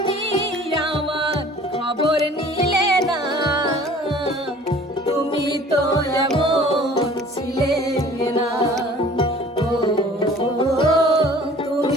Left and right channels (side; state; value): both; normal; correlation 0.49